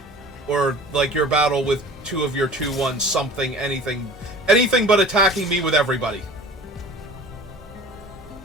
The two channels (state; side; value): normal; both; correlation 0.43